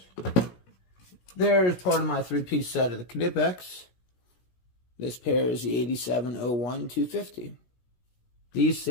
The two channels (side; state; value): right; late; 16 ms